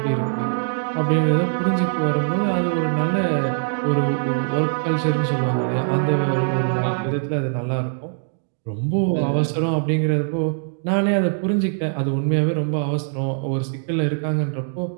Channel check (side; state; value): left; silent; 64 dB below the other